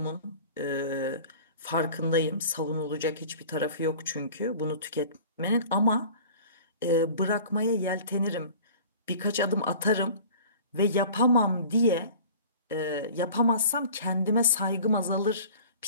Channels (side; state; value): both; inverted; correlation -0.43